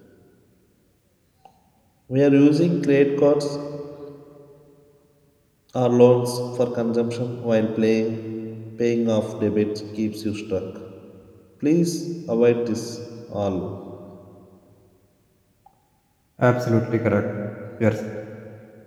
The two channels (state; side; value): identical; both; correlation 1.00